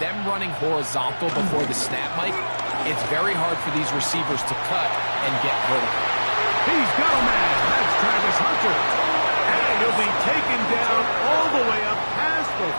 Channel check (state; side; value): inverted; both; correlation -1.00